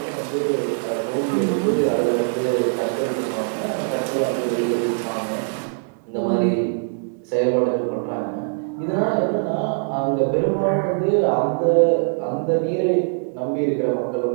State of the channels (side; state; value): left; silent; digital silence